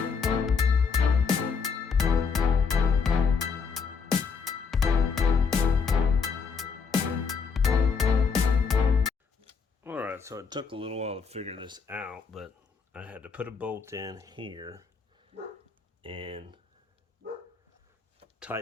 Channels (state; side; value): quieter; right; 5.5 dB